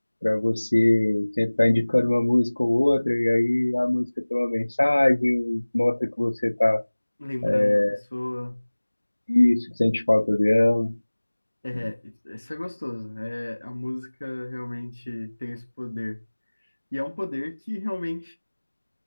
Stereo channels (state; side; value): inverted; both; correlation -1.00